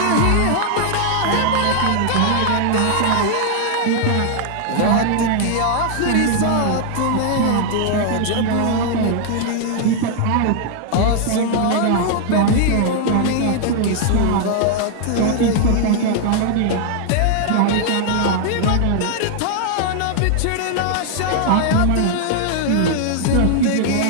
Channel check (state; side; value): different; both; correlation 0.00